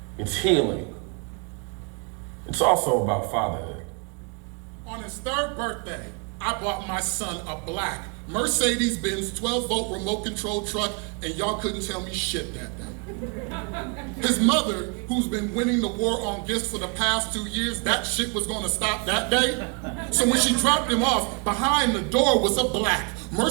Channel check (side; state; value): left; quieter; 34.6 dB